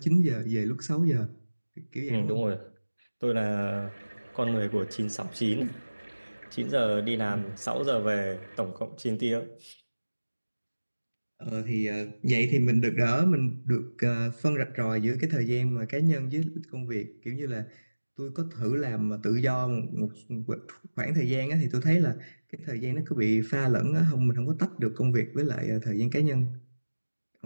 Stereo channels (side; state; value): both; inverted; correlation -1.00